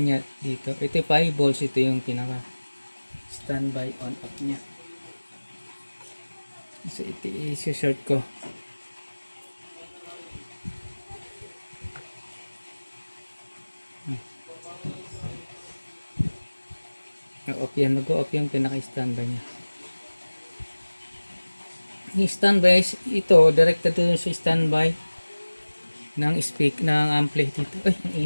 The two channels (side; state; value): both; inverted; correlation -1.00